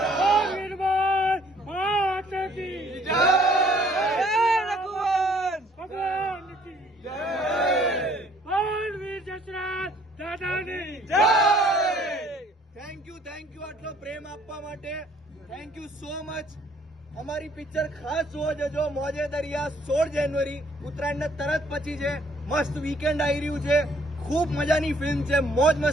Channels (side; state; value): both; normal; correlation 0.61